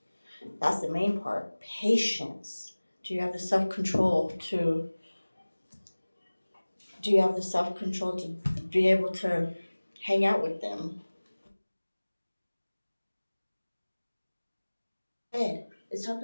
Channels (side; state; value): both; inverted; correlation -1.00